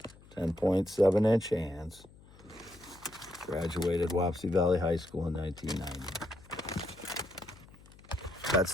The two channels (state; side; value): noise; left; hum, 23 dB below the sound